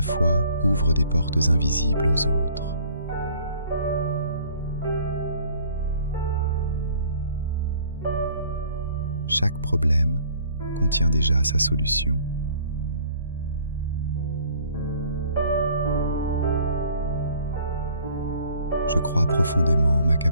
ouvre des portes invisibles aux autres. Chaque problème contient déjà sa solution. Je crois profondément en ma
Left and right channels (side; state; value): both; inverted; correlation -0.56